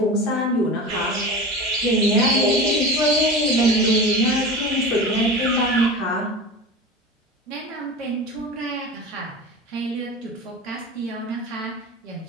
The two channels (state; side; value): normal; both; correlation 0.31